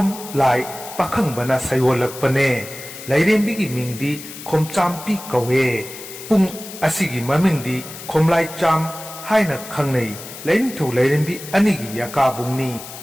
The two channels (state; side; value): noise; left; hiss, 13 dB below the sound